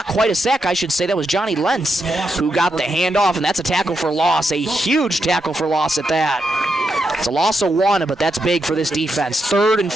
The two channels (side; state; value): both; normal; correlation 0.83